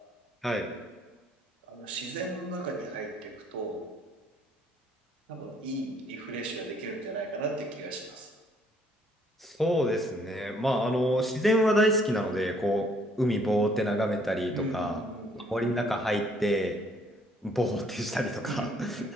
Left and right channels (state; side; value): normal; both; correlation 0.64